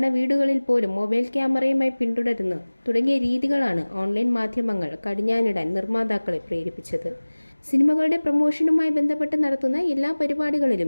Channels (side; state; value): both; inverted; correlation -1.00